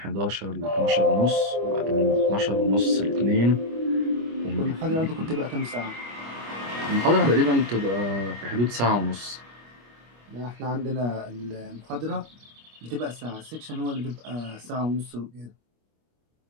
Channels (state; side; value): late; left; 25 ms